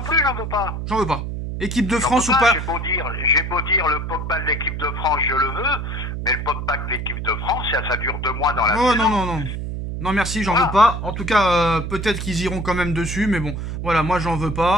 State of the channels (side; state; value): right; noise; hum, 5 dB below the sound